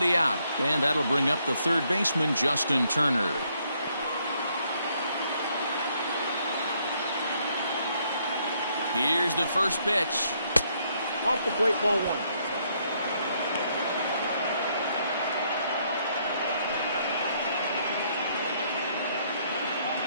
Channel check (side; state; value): both; inverted; correlation -0.71